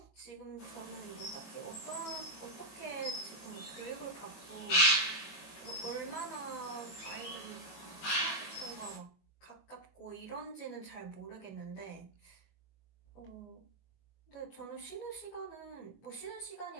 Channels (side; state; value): right; late; 21 ms